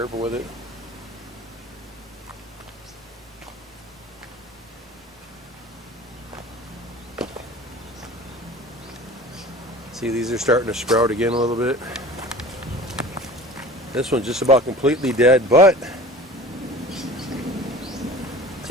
with it. See, these are starting to sprout again a little bit. This one's just about completely dead, but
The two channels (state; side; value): normal; both; correlation 0.40